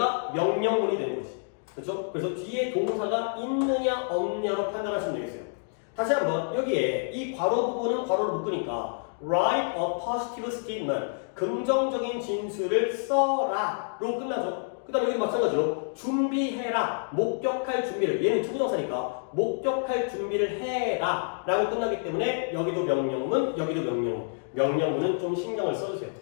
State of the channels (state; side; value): silent; right; digital silence